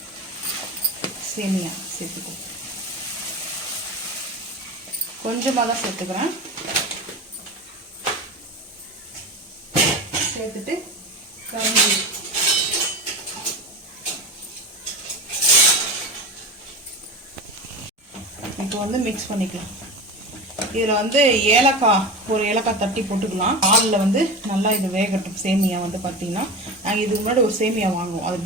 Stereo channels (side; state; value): both; normal; correlation 0.27